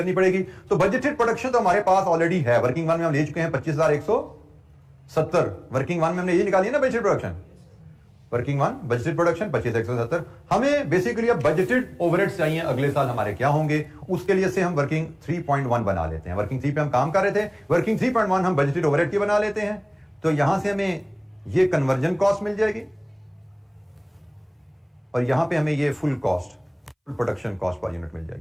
पड़ेगी। तो बजटेड प्रोडक्शन तो हमारे पास ऑलरेडी है, वर्किंग वन में हम ले चुके हैं 25,170। वर्किंग वन में हमने ये निकाली है ना budgeted production, working one budgeted production 25,170। हमें बेसिकली अब बजटेड ओवरहेड्स चाहिए अगले साल हमारे क्या होंगे, उसके लिए से हम वर्किंग 3.1 बना लेते हैं। वर्किंग 3 पे हम काम कर रहे थे, वर्किंग 3.1 हम बजटेड ओवरहेड की बना लेते हैं। तो यहां से हमें ये कन्वर्जन कॉस्ट मिल जाएगी और यहां पे हमें ये full cost, full production cost per unit मिल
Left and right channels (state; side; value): identical; both; correlation 1.00